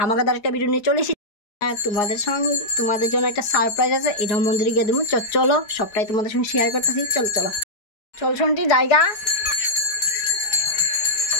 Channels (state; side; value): late; right; 4.8 ms